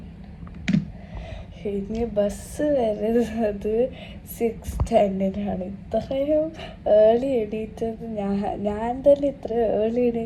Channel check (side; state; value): both; identical; correlation 1.00